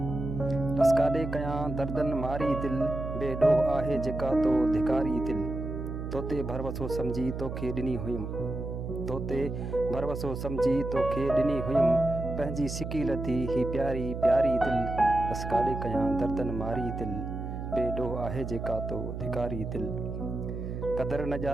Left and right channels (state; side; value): noise; right; hum, 6 dB below the sound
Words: ॾसकाॾे कयां दर्दनि मारी दिल बेॾोह आहे जेका तो धिकारी दिल तोते भरवसो सम्झी तोखे ॾिनी हुयमि तोते भरवसो सम्झी तोखे ॾिनी हुयमि पंहिंजी सिकी लधी ही प्यारी प्यारी दिल ॾसकाॾे कयां दर्दनि मारी दिल बेॾोह आहे जेका तो धिकारी दिल कदर न